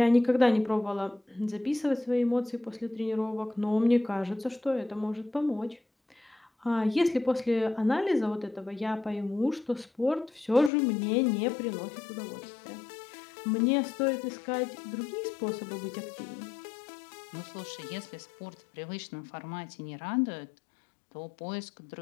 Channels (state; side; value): drops out; right; at 10.7 s